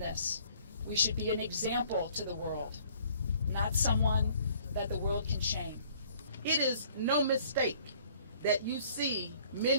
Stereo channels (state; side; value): inverted; both; correlation -0.57